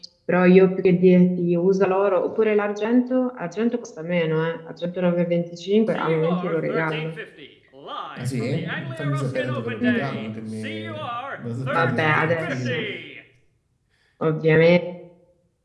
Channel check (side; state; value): both; identical; correlation 1.00